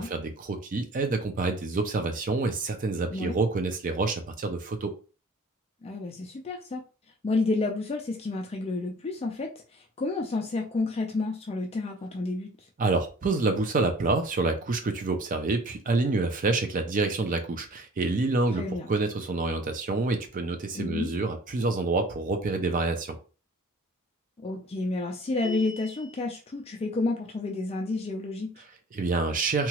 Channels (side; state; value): both; normal; correlation 0.49